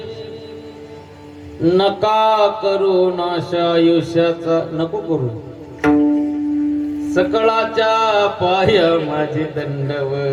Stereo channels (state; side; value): identical; both; correlation 1.00